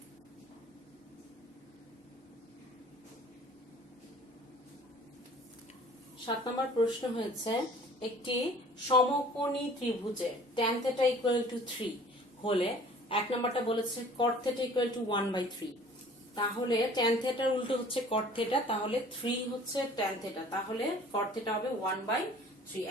সাত নম্বর প্রশ্ন হয়েছে, একটি সমকোণী ত্রিভুজে tan θ = 3 হলে, এক নম্বরটা বলেছে cot θ = 1/3। তাহলে tan θ এর উল্টো হচ্ছে cot θ, তাহলে 3 হচ্ছে tan θ, তাহলে cot θ হবে 1/3।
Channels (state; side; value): normal; both; correlation 0.50